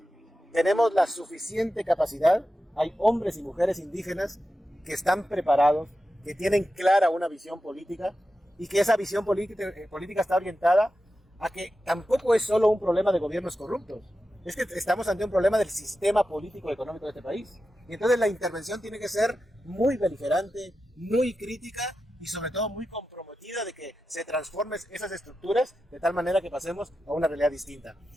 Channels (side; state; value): both; normal; correlation 0.91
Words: Tenemos la suficiente capacidad, hay hombres y mujeres indígenas que están preparados, que tienen clara una visión política y que esa visión política está orientada a que tampoco es solo un problema de gobiernos corruptos, es que estamos ante un problema del sistema político y económico de este país. Y entonces la intervención tiene que ser muy beligerante, muy crítica y sobre todo muy comprometida de que se transformen esas estructuras de tal manera que pasemos a una realidad distinta.